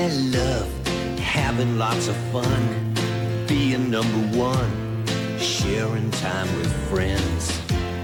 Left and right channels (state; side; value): identical; both; correlation 1.00